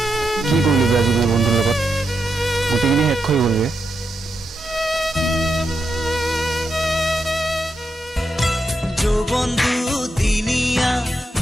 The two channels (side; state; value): both; normal; correlation 0.85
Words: কি কৰিলো আজি মই বন্ধুৰ লগত গোটেইখিনি শেষ হৈ গ'লগৈ বন্ধু দিনিয়া